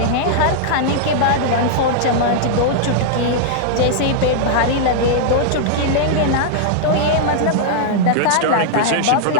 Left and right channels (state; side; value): different; both; correlation -0.01